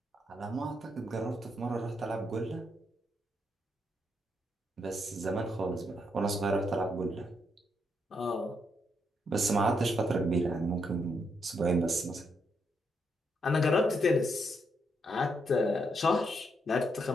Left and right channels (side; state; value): both; normal; correlation 0.78